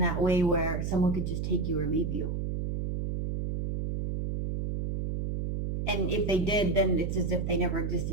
way where someone could just take you or leave you. And if they did, then it's as if they never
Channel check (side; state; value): right; noise; hum, 2 dB below the sound